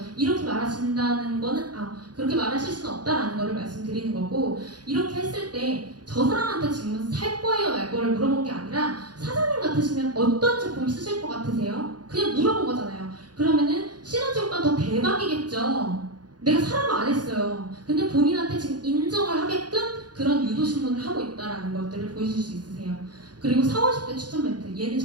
이렇게 말하신다는 거는 그렇게 말하실 수는 없다라는 거를 말씀드리는 거고 이렇게 했을 때 저 사람한테 지금 살 거예요 말 거를 물어본 게 아니라 사장님 같으시면 어떤 제품 쓰실 것 같으세요? 그냥 물어본 거잖아요. 그러면은 시너지 효과 더 대박이겠죠. 내가 사람을 안 했어요. 근데 본인한테 지금 인정을 하게끔 그런 유도신문을 하고 있다라는 것들을 보여줄 수 있으세요. 그리고 4, 50대 추천 멘트 얘는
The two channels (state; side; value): late; left; 0.69 ms